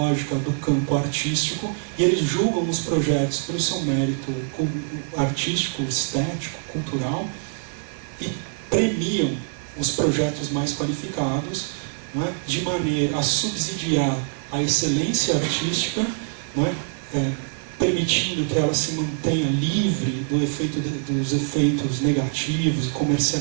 do campo artístico, e eles julgam os projetos pelo seu mérito artístico, estético, cultural, e premiam os projetos mais qualificados, não é? De maneira a subsidiar a excelência artística, não é? Permitindo que ela se mantenha livre dos efeitos negativos,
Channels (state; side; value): silent; left; 57 dB below the other